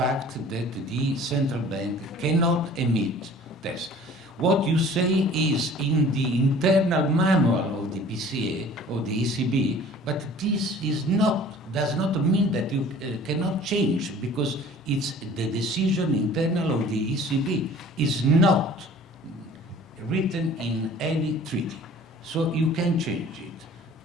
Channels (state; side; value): normal; both; correlation 0.48